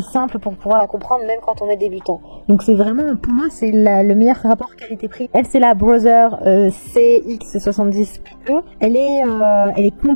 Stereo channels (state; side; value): inverted; both; correlation -1.00